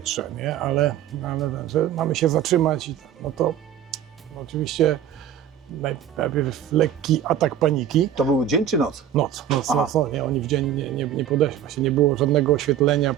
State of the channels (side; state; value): left; quieter; 9.9 dB